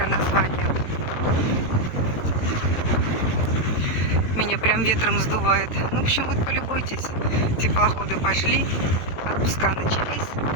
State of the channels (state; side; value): late; right; 18 ms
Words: название. Меня прям ветром сдувает. Ну, в общем, вот полюбуйтесь. Теплоходы пошли, отпуска начались.